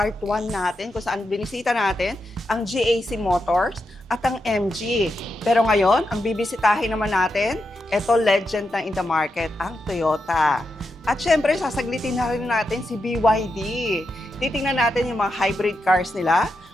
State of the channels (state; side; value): normal; both; correlation 0.86